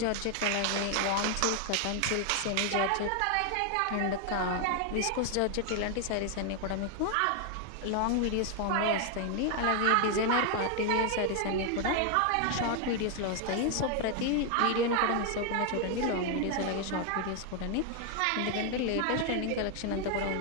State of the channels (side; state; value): both; different; correlation 0.00